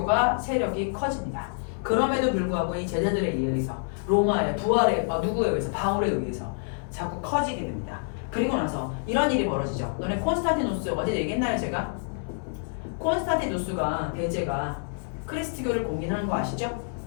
세력이 커집니다. 그럼에도 불구하고 이 제자들에 의해서 로마의 부활에 누구에 의해서? 바울에 의해서 자꾸 커지게 됩니다. 그리고 나서 이런 일이 벌어지죠. 너네 콘스탄티누스 어제 얘기했나요 제가? 콘스탄티누스가 대제가 그리스도교를 공인하는 거 아시죠?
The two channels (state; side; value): silent; right; digital silence